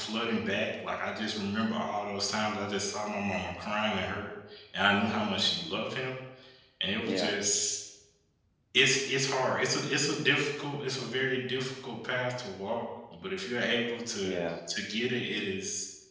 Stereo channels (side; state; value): both; identical; correlation 1.00